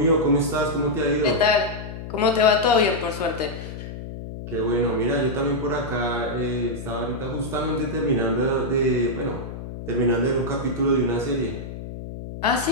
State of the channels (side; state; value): left; noise; hum, 10 dB below the sound